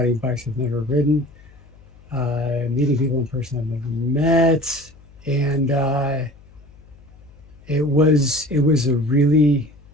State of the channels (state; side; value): noise; left; hum, 25 dB below the sound